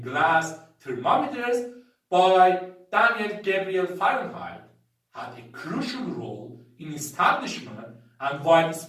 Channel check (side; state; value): both; identical; correlation 1.00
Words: glass thermometers by Daniel Gabriel Fahrenheit had a crucial role in establishment and